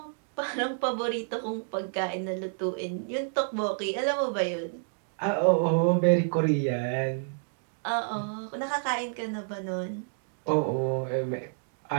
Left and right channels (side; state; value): left; silent; digital silence